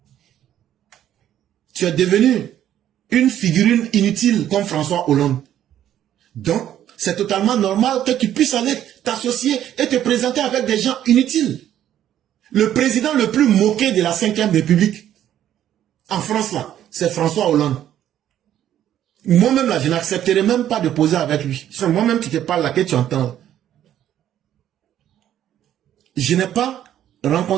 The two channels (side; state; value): left; quieter; 11.3 dB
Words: Tu es devenu une figurine inutile comme François Hollande. Donc, c'est totalement normal que tu puisses aller t'associer et te présenter avec des gens inutiles. Le président le plus moqué de la 5e République, en France là, c'est François Hollande. Moi-même, là, je n'accepterai même pas de poser avec lui. C'est moi-même qui te parle là, que tu entends. Je n'ai pas